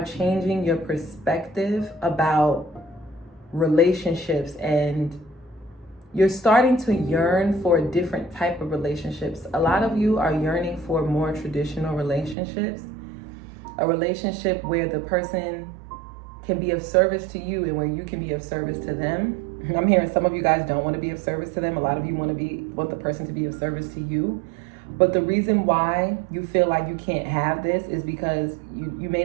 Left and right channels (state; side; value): drops out; left; at 12.4 s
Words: changing your perspective about relationships, and you're starting to yearn for a different type of relationships. A lot of you are yearning for more traditional relationships, a relationship where the person can be of service to you and where you can be of service to them. I'm hearing some of you guys don't want to be of service to them. A lot of you want the person to be of service to you. But the reason why you feel like you can't have this is because you may